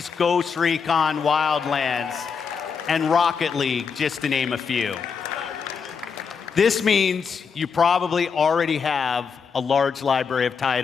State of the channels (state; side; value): quieter; right; 6.0 dB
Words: Ghost Recon Wildlands, and Rocket League, just to name a few. This means you probably already have a large library of